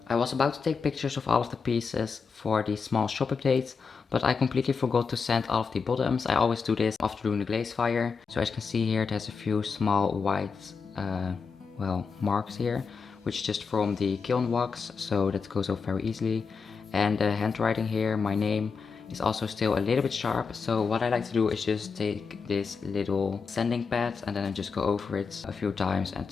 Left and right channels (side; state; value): right; quieter; 5.3 dB